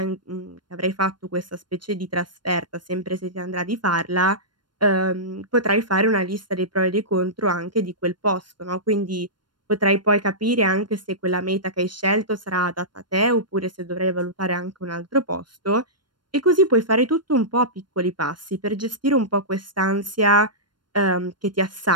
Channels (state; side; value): late; left; 0.71 ms